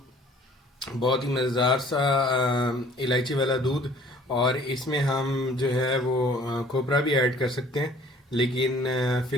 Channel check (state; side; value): normal; both; correlation 0.53